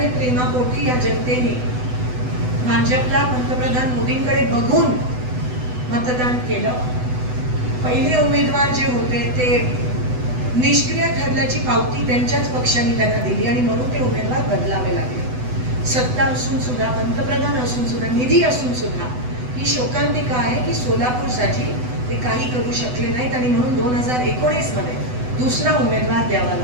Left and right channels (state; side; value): late; left; 8.0 ms